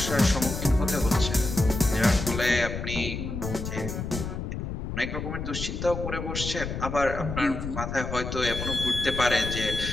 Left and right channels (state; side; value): noise; left; rumble, 5 dB below the sound